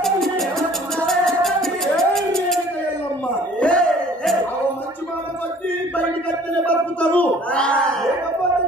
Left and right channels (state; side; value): normal; both; correlation 0.53